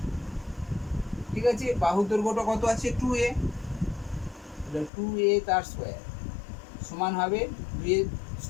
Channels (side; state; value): right; drops out; at 4.9 s